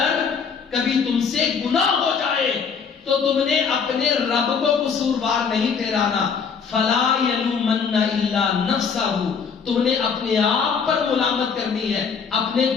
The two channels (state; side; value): quieter; right; 6.1 dB